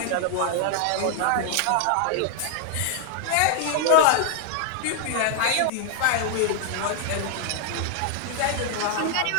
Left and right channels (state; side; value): different; both; correlation 0.00